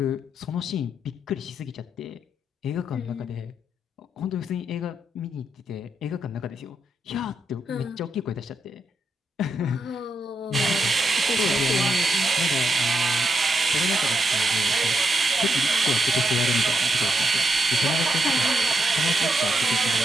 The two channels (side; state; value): both; normal; correlation 0.82